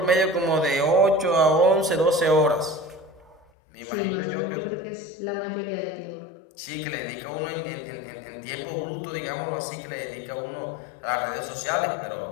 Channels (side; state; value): right; drops out; at 3.4 s